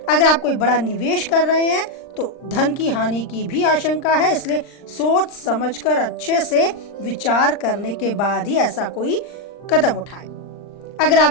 अगर आप कोई बड़ा निवेश कर रहे हैं तो धन की हानि की भी आशंका है, इसलिए सोच समझकर अच्छे से विचार करने के बाद ही ऐसा कोई कदम उठाएं। अगर आप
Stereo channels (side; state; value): right; late; 39 ms